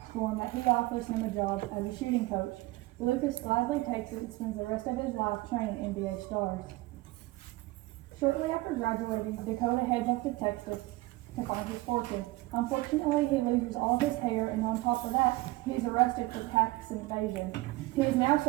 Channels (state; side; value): quieter; left; 20.5 dB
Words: form that he offers him a job as a shooting coach. Lucas gladly takes it and spends the rest of his life training NBA stars. Shortly after graduating, Dakota heads off to Texas to find his fortune. Unfortunately, he loses all of his hair, and on top of that, he's arrested for tax evasion. He is now